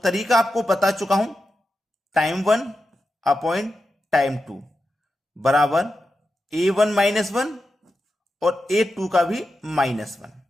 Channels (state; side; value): normal; both; correlation 0.89